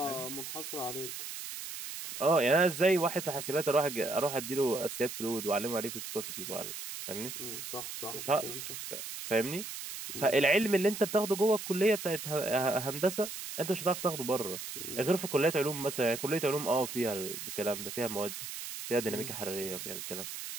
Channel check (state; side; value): noise; right; hiss, 8 dB below the sound